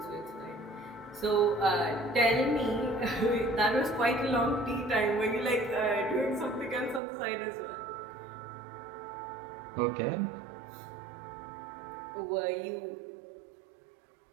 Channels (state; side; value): drops out; left; at 7.0 s